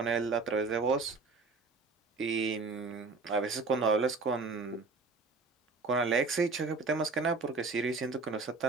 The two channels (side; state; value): left; quieter; 4.1 dB